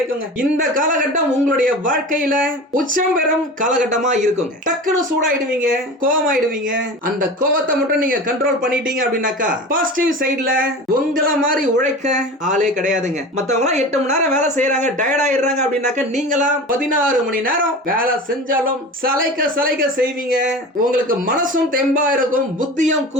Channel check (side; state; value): both; normal; correlation 0.33